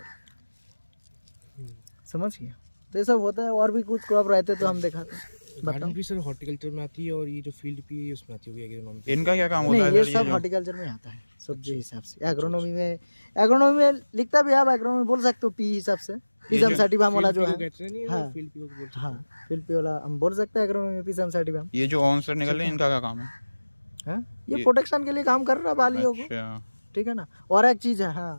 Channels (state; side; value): inverted; both; correlation -1.00